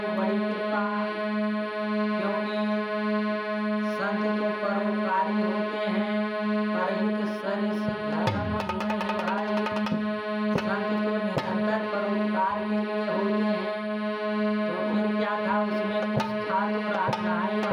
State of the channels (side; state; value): both; identical; correlation 1.00